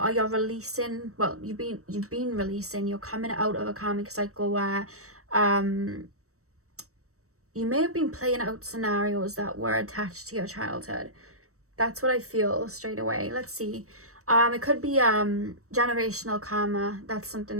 you're releasing, well, you've been releasing, you're coming out of a karmic cycle where you may have been playing out scenarios that were attached to your childhood. That's what I feel straight away. Let's see. It could be generational karma. That's something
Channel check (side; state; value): left; late; 0.65 ms